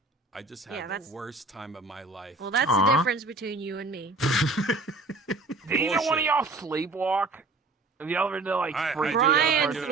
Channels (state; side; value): quieter; left; 3.2 dB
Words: I just had the worst time of my life. Well, that's the difference between you and me. Did either one of y'all sleepwalk? And the other day, freak Brian